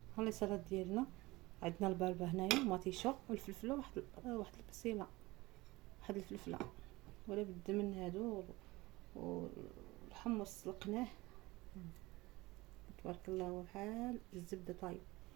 ها لي سالاد ديالنا، عندنا البربه هنايا ومطيشه والفلفله واحد البصيله، واحد الفلفله ولا بد من هادو، والحمص سلقناه تبارك الله بحال الزبده طايب،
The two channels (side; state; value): left; quieter; 20.7 dB